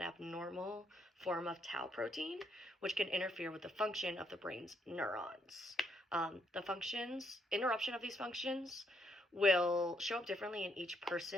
abnormal form of tau protein, which can interfere with the function of the brain's neurons. Interruption of these functions will show up differently in each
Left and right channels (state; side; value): normal; both; correlation 0.73